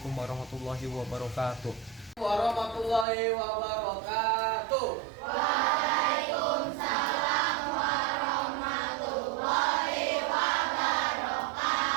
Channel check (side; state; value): left; drops out; at 3.1 s